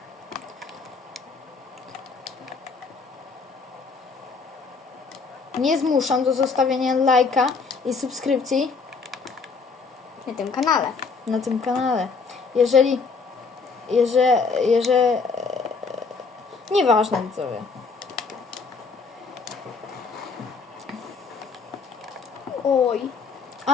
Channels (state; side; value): quieter; right; 4.7 dB